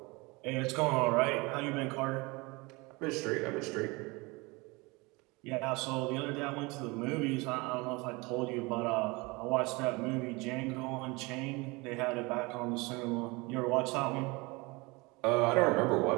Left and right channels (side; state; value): left; quieter; 25.2 dB